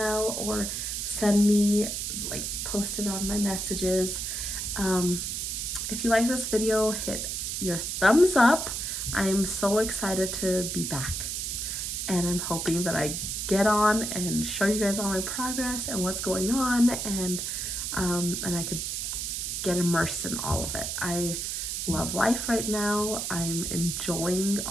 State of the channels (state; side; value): noise; right; hiss, 3 dB below the sound